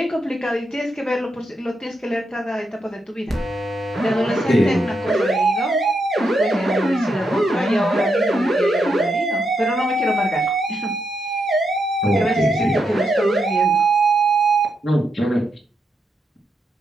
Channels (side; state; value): both; normal; correlation 0.82